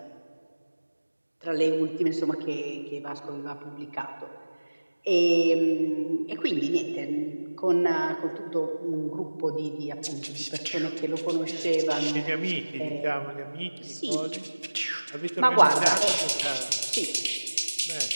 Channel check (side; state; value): both; inverted; correlation -1.00